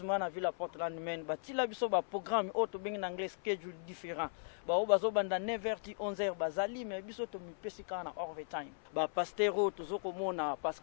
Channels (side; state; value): right; silent; 53 dB below the other